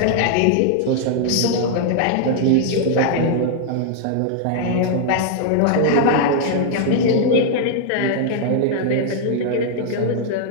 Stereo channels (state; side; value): different; both; correlation 0.00